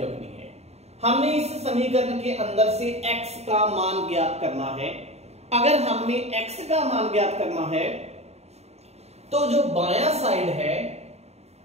रखनी है। हमने इस समीकरण के अंदर से x का मान ज्ञात करना है। अगर हमने x का मान ज्ञात करना है तो जो बायां साइड है,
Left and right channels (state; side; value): late; left; 0.31 ms